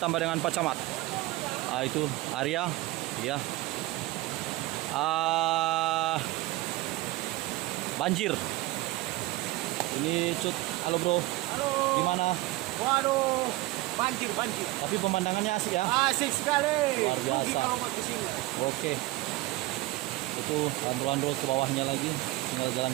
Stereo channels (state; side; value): quieter; left; 19.3 dB